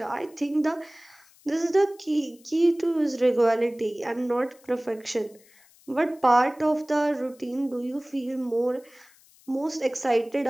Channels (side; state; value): left; noise; hiss, 28 dB below the sound